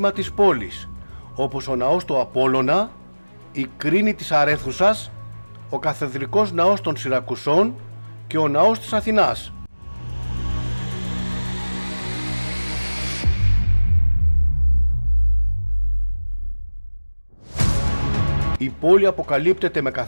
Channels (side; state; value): both; inverted; correlation -1.00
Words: της πόλης, όπως ο ναός του Απόλλωνα, η κρίνη της Αρέθουσας, ο καθεδρικός ναός των Σιρακουσών και ο ναός της Αθηνάς. Η πόλη αποκαλύπτεται με